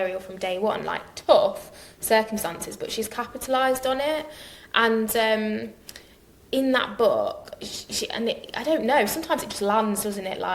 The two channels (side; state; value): both; identical; correlation 1.00